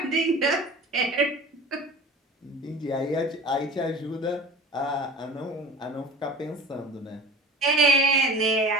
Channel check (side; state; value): both; normal; correlation 0.38